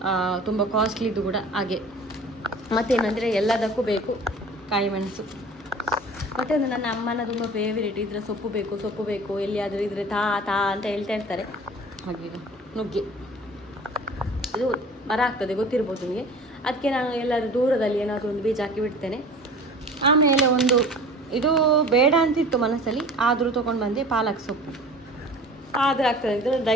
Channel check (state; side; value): normal; both; correlation 0.43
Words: ತುಂಬ ಕಾಸ್ಟ್ಲಿದ್ದು ಕೂಡ ಹಾಗೆ. ಮತ್ತೇನಂದರೆ ಎಲ್ಲದಕ್ಕೂ ಬೇಕು ಕಾಯಿ ಮೆಣಸು. ಮತ್ತು ಒಂದು ನನ್ನ ಅಮ್ಮನ ತುಂಬ ಫೇವರೇಟ್, ಇದರ ಸೊಪ್ಪು ಬೇಕು ಎಲ್ಲಿಯಾದರೂ ಇದ್ರೆ ತಾ ಅಂತ ಹೇಳ್ತಾ ಇರ್ತಾರೆ. ಹಾಗೆ ನುಗ್ಗೆ ಇದು ಮರ ಆಗ್ತದೆ ಗೊತ್ತಿರ್ಬೋದು ನಿಮಗೆ. ಅದಕ್ಕೆ ನಾನು ಎಲ್ಲರೂ ದೂರದಲ್ಲಿ ಏನಾದರೂ ಒಂದು ಬೀಜ ಹಾಕಿ ಬಿಡ್ತೇನೆ. ಆಮೇಲೆ ಒಂದು ಇದು ಬೇಡ ಅಂತಿತ್ತು ಮನಸ್ಸಲ್ಲಿ, ಆದರೂ ತೊಗೊಂಡು ಬಂದೆ ಪಾಲಕ್ ಸೊಪ್ಪು. ಆದರೆ ಆಗ್ತದೆ ಅಂತ